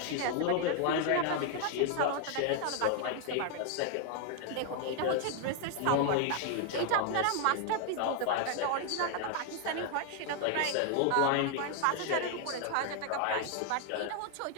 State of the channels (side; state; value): both; different; correlation 0.00